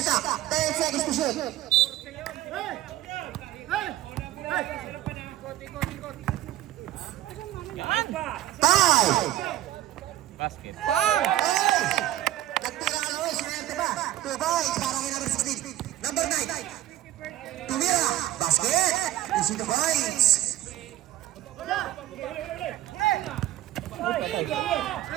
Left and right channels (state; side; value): quieter; left; 14.2 dB